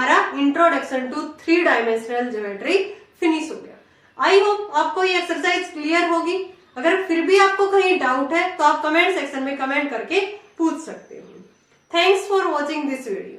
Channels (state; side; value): identical; both; correlation 1.00